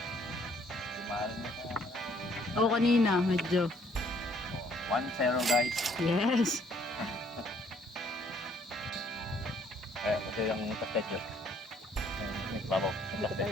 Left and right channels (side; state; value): both; normal; correlation 0.64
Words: Mahal mo ka. Oo, kanina, medyo. 1-0 guys. Yes. Kasi yung kastet yun. Nagbabaw sa